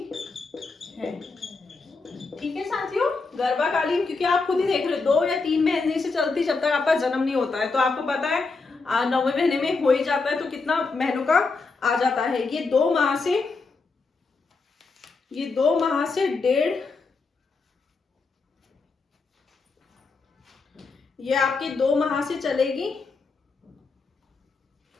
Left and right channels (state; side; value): quieter; right; 4.1 dB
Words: है। ठीक है साथियों, गर्भकालीन, क्योंकि आप खुद ही देख रहे हो 2 या 3 महीने से चलती जब तक आपका जन्म नहीं होता है। तो आपको पता है 9वें महीने में हो ही जाता है, तो कितना महीनों का आ जाता है। ये 2 माह से 1.5, ये आपके 2 माह से चलेगी।